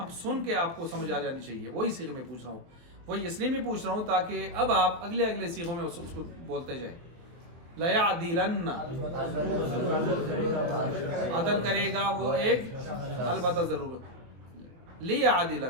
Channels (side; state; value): left; late; 23 ms